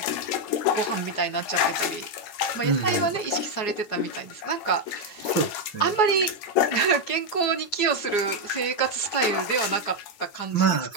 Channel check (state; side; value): late; right; 9.1 ms